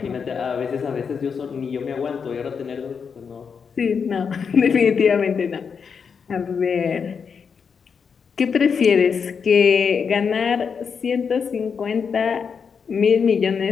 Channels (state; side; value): quieter; right; 6.2 dB